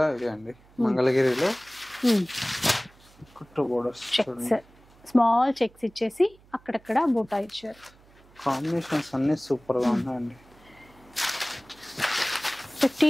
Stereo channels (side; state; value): right; noise; hum, 27 dB below the sound